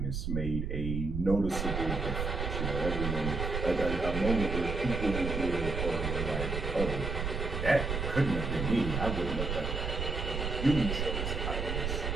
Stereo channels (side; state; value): right; noise; rumble, 2 dB below the sound